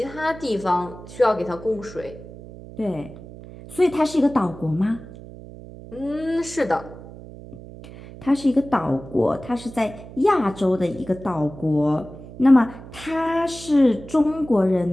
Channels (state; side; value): noise; right; hum, 16 dB below the sound